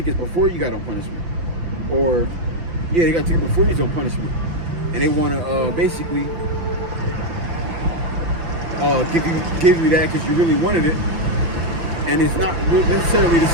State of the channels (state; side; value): late; left; 5.9 ms